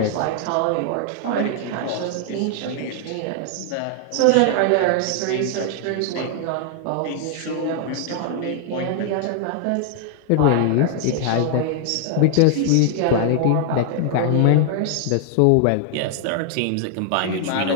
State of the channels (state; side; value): different; both; correlation 0.00